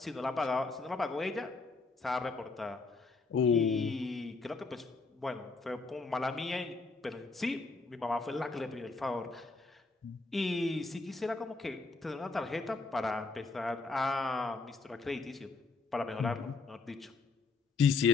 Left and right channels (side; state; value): right; quieter; 4.0 dB